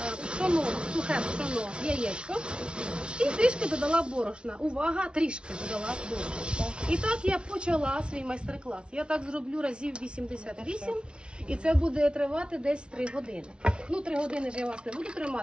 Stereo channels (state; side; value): late; left; 0.056 ms